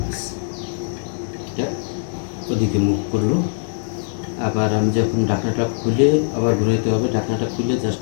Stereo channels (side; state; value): right; silent; 65 dB below the other